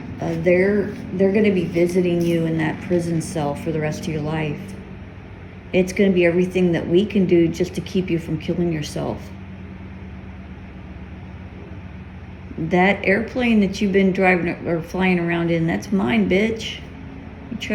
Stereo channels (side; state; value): both; identical; correlation 1.00